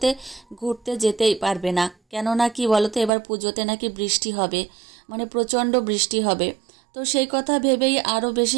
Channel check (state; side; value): drops out; left; at 3.1 s